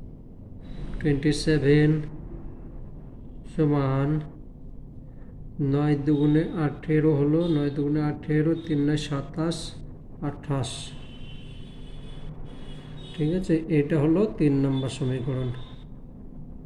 সমান 9 দুগুণে 18 হলো, 9 দুগুণে 18, 3 9 27, 28। ঠিক আছে, এটা হলো 3 নম্বর সমীকরণ।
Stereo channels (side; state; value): both; identical; correlation 1.00